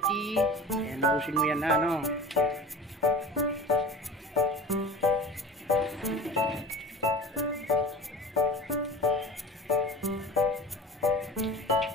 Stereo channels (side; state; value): both; normal; correlation 0.37